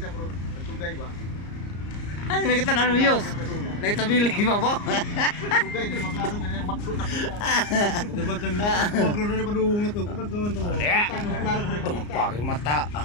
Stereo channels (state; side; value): late; right; 34 ms